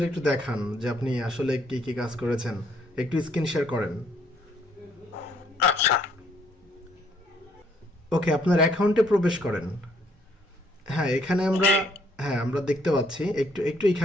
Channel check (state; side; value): normal; both; correlation 0.67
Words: একটু দেখান যে আপনি আসলে কি কি কাজ করেছেন, একটু স্ক্রিন শেয়ার করেন। আচ্ছা, ওকে, আপনার অ্যাকাউন্টে প্রবেশ করেন। হ্যাঁ, এখানে আমরা, জি। হ্যাঁ আমরা দেখতে পাচ্ছি, একটু একটু